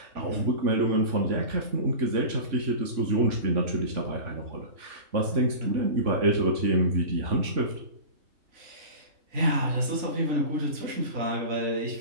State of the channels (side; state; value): left; late; 3.5 ms